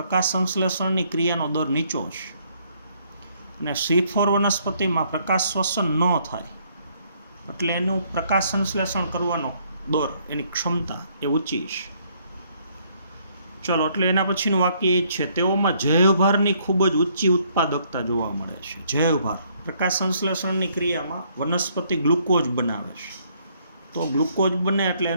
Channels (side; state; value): both; inverted; correlation -0.67